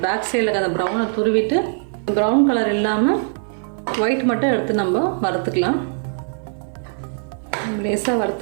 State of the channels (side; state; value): left; silent; 58 dB below the other